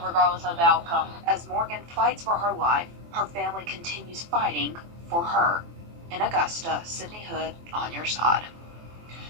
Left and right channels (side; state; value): left; late; 24 ms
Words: regardless of the outcome. As Morgan fights for her life, her family continues fighting for her. In Augusta, Sydney Hood, on your side.